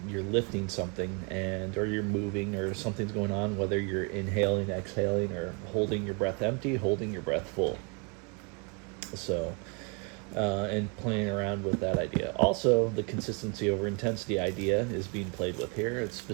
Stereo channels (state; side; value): quieter; left; 34.5 dB